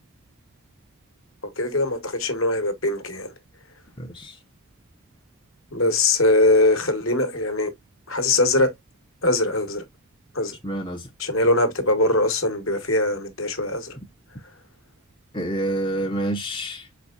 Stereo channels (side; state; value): both; normal; correlation -0.19